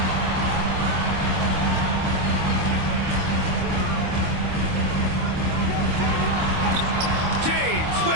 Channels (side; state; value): left; late; 25 ms